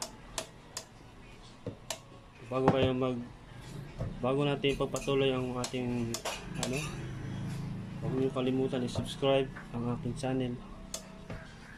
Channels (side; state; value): both; identical; correlation 1.00